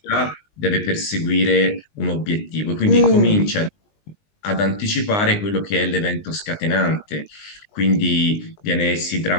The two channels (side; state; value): right; late; 19 ms